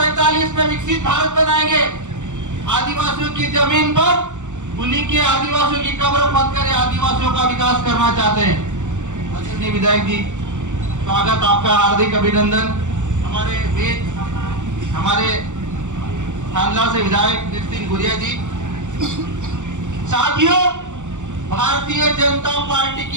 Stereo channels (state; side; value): late; left; 0.85 ms